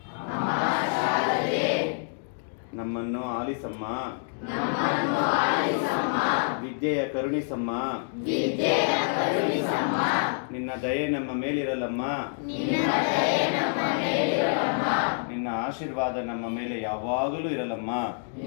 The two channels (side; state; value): right; silent; digital silence